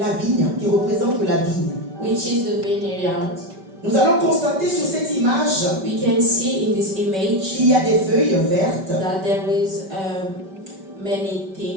vigne, qui représente la vigne. which is the vineyard. Nous allons constater sur cette image We can see in this image qu'il y a des feuilles vertes, that there is many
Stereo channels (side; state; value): left; late; 5.2 ms